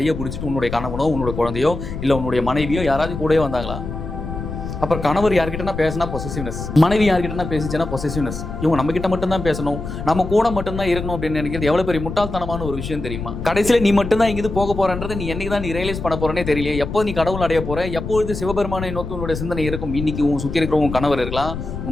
பிடிச்சிட்டு உன்னுடைய கணவனோ உன்னுடைய குழந்தையோ இல்ல உன்னுடைய மனைவியோ யாராவது கூடயே வந்தாங்களா? அப்புறம் கணவர் யார்கிட்டனா பேசினா பொசசிவ்னஸ், மனைவி யார்கிட்டனா பேசிச்சுன்னா பொசசிவ்னஸ். இவங்க நம்ம கிட்ட மட்டும் தான் பேசணும், நம்ம கூட மட்டும் தான் இருக்கணும் அப்படின்னு நினைக்கிறது எவ்வளவு பெரிய முட்டாள்தனமான ஒரு விஷயம் தெரியுமா? கடைசியில நீ மட்டும் தான் இங்கிருந்து போக போறன்றது நீ என்னைக்கு தான் நீ ரியலைஸ் பண்ண போறேனே தெரியல. எப்போ நீ கடவுள் அடைய போற, எப்பொழுது சிவபெருமானை நோக்கி உன்னுடைய சிந்தனை இருக்கும்? இன்னைக்கு உன் சுத்தி இருக்கிற உன் கணவர் இருக்கலாம்,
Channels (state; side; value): noise; left; rumble, 7 dB below the sound